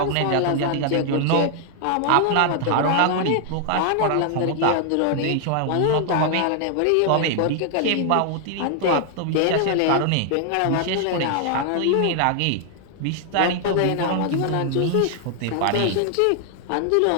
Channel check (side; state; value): both; different; correlation 0.00